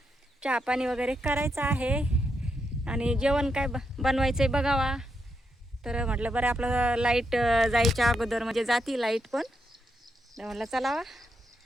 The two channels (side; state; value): both; normal; correlation 0.82